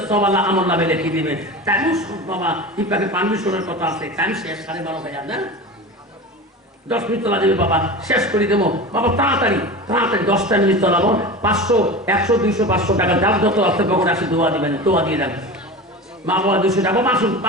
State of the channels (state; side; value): normal; both; correlation 0.30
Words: সব আল্লাহ আমল নামে লিখে দিবেন। তাই বাবা ইপাকে পারমিশনের কথা আছে, টাইম শেষ 12:30 না 10 মিনিট তোলা দেবে বাবা, শেষ করে দেবো বাবা। তাড়াতাড়ি তাড়াতাড়ি 10টা মিনিট তোলাবো। 500 100 200 500 টাকা যার যত আছে কখন আসে দোয়া দিবেন, দোয়া দিয়ে দেন। মা বাবা 200 টাকা আসুন,